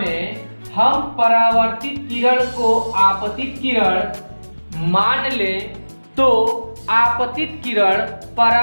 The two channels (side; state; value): both; inverted; correlation -1.00